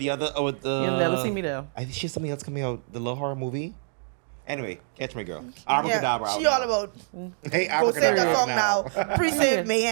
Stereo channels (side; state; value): left; silent; digital silence